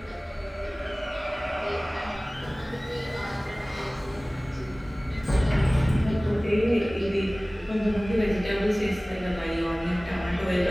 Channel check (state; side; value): normal; both; correlation 0.98